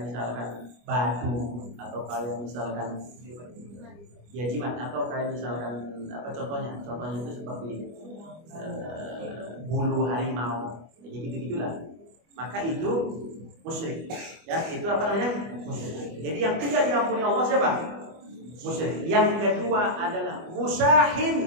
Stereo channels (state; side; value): late; left; 25 ms